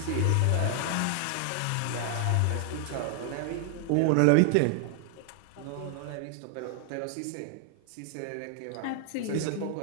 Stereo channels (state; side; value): different; both; correlation 0.00